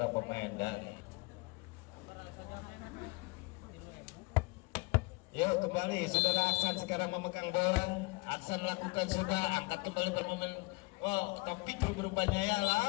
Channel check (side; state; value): right; quieter; 26.2 dB